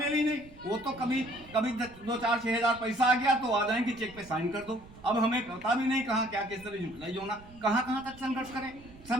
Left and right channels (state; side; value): noise; right; rumble, 21 dB below the sound